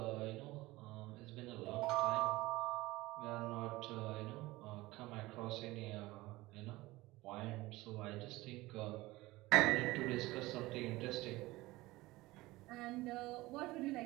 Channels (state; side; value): quieter; left; 19.6 dB